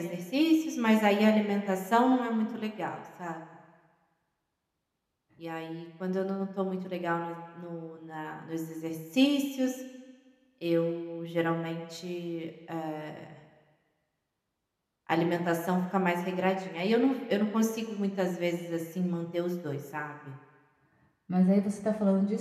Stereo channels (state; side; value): identical; both; correlation 1.00